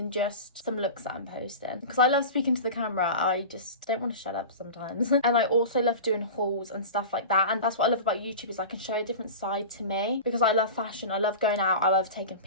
just some looks that I'm posting, because I love speaking to the camera. I just don't want to shut up sometimes. And I also love doing hauls and stuff like that, and that's what I love about YouTube, is I can show a different side to me, because I love fashion, I love going out, I love taking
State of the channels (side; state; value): both; inverted; correlation -0.31